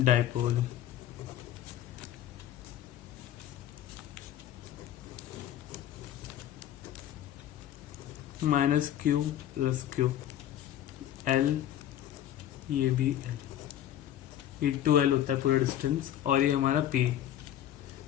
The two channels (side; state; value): right; quieter; 11.5 dB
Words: Minus Q plus Q L, ये भी एल, ये 2L होता है पूरा डिस्टेंस, और ये हमारा P।